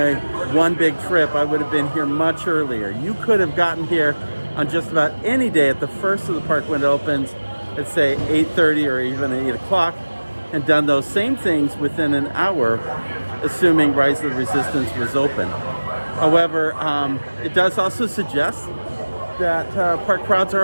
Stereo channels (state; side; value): inverted; both; correlation -1.00